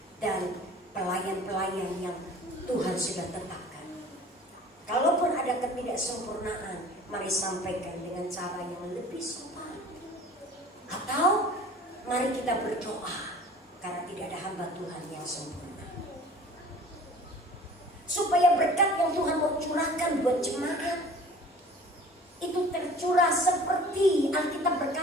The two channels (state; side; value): normal; both; correlation 0.46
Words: dan pelayan-pelayan yang Tuhan sudah tetapkan. Kalaupun ada ketidaksempurnaan, mari sampaikan dengan cara yang lebih sopan. Atau mari kita berdoa, karena tidak ada hamba Tuhan yang sempurna. Supaya berkat yang Tuhan mau curahkan buat jemaat itu tercurah seperti Alkitab